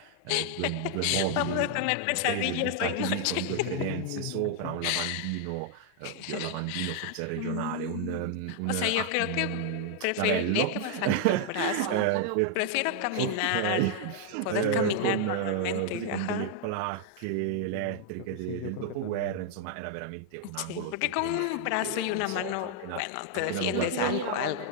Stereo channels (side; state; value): both; different; correlation 0.00